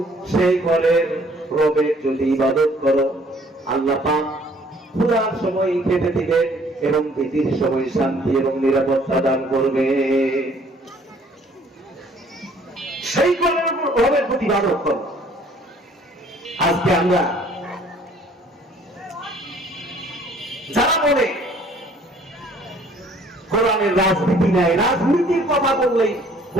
সেই ঘরের রবের যদি ইবাদত করো, আল্লাহ পাক পুরার সময় খেতে দিবেন এবং ভীতির সময় শান্তি এবং নিরাপত্তা দান করবে। সেই ঘরের রবের প্রতি ইবাদত করো। আজকে আমরা যারা বলে কোরআনের রাজনীতি নাই, রাজনীতির কথা বললেই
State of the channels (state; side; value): normal; both; correlation 0.58